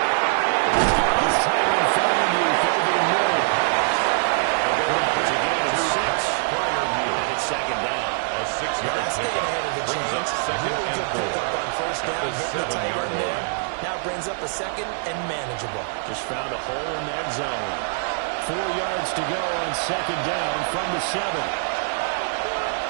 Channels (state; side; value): silent; left; digital silence